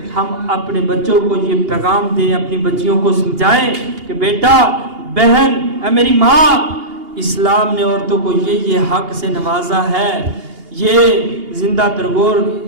ہم اپنے بچوں کو یہ پیغام دیں، اپنی بچیوں کو سمجھائیں کہ بیٹا، بہن، اے میری ماں، اسلام نے عورتوں کو یہ حق سے نوازا ہے، یہ زندہ ترگور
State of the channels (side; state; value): left; late; 2.8 ms